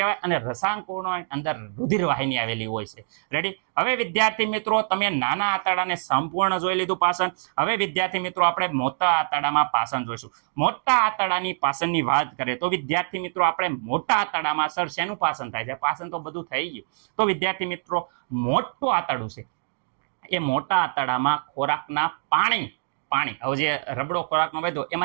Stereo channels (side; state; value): left; silent; digital silence